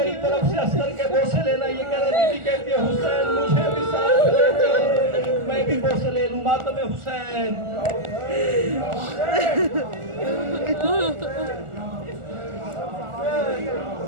طرف سے اصغر کے بوسے لینا. یہ کہہ رہے بیوی کہتی ہے حسین مجھے بھی ساتھ لے چل، میں بھی بوسے لے لوں. ماتم حسین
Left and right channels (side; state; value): left; late; 1.4 ms